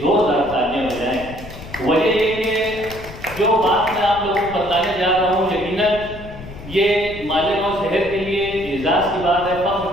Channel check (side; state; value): left; noise; rumble, 14 dB below the sound